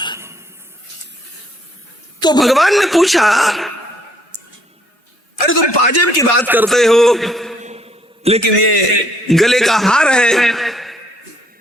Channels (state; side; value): normal; both; correlation 0.66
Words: तो भगवान ने पूछा, अरे तुम पाजेब की बात करते हो, लेकिन ये गले का हार है,